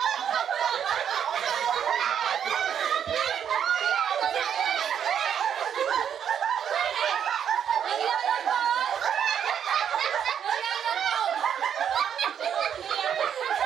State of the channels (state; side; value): quieter; left; 8.6 dB